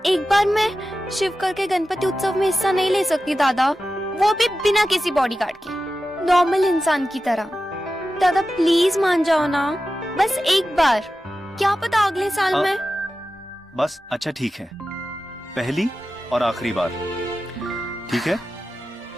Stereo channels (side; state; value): both; normal; correlation 0.93